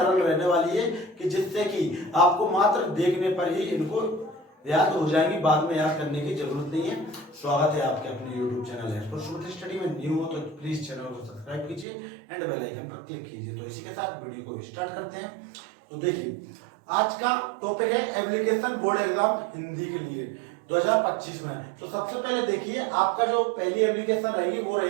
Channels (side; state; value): left; drops out; at 11.9 s